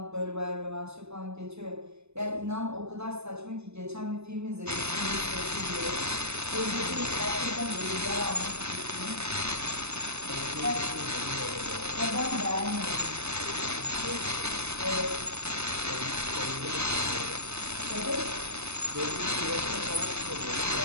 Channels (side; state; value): left; late; 0.81 ms